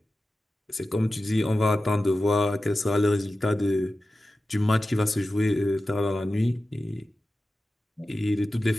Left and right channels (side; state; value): both; normal; correlation 0.94